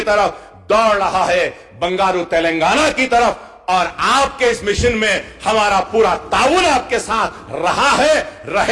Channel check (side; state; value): both; identical; correlation 1.00